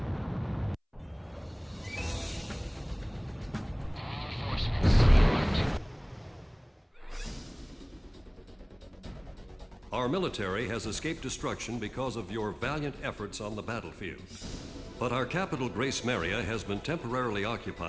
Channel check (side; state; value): both; identical; correlation 1.00